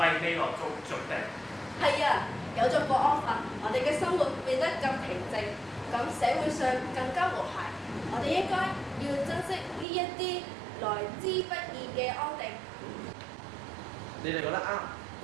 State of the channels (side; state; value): left; drops out; at 9.9 s